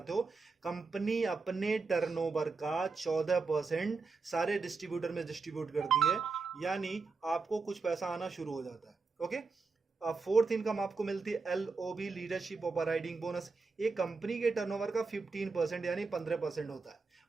हो, कंपनी अपने टर्नओवर का 14% सारे डिस्ट्रीब्यूटर में डिस्ट्रीब्यूट करती है। यानी आपको कुछ पैसा आना शुरू हो जाता है। ओके। फोर्थ इनकम आपको मिलती है LOB, लीडरशिप ओवरराइडिंग बोनस। ये कंपनी के टर्नओवर का 15% यानी 15% होता है।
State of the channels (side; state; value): left; quieter; 4.3 dB